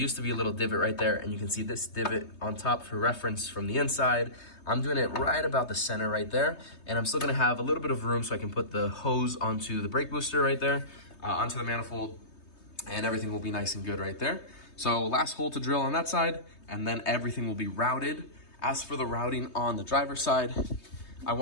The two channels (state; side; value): late; right; 3.2 ms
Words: to be a little divot right there, and you can see this divot on top for reference from the inside. I'm doing it right about the center right there, and I'm still gonna have a little bit of room so I can put the hose onto the brake booster right there, onto the manifold, and everything will be nice and good right there. So last hole to drill on that side, and then everything will be routed. As for the routing on the driver's side, I